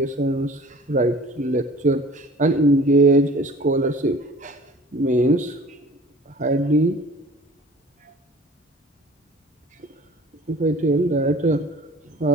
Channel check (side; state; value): both; normal; correlation 0.45